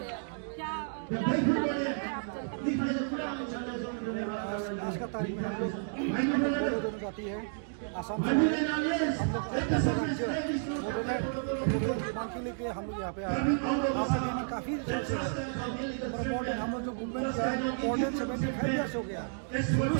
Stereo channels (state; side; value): silent; left; digital silence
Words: का तारीख में हम लोग दोनों जाती है आसाम से हम लोग मांग के लेके हम लोग यहाँ पे आए। आपके लिए काफ़ी इम्पोर्टेंट हम लोग जो मूवमेंट किया है 75 ईयर्स हो गया। शुरू